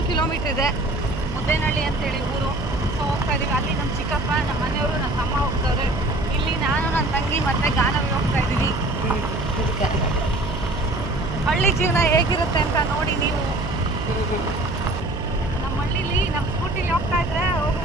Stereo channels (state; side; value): noise; right; hum, 7 dB below the sound